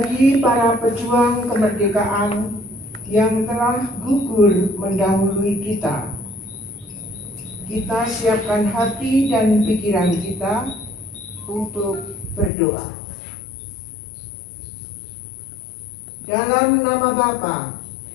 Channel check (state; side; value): drops out; right; at 12.5 s